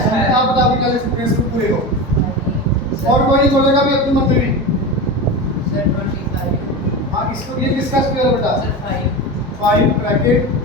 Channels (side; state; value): both; normal; correlation 0.24